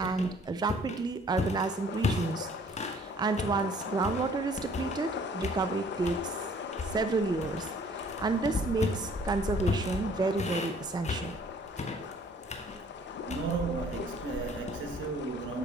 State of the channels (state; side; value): normal; both; correlation 0.57